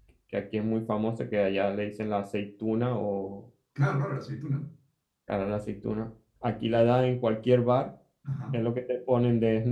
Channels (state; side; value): identical; both; correlation 1.00